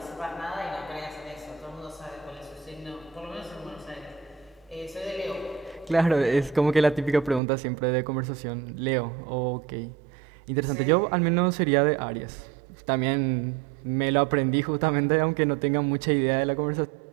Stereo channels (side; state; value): left; drops out; at 7.4 s